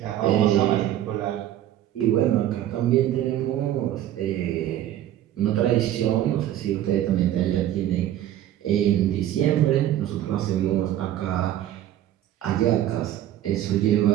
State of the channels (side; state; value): left; quieter; 12.3 dB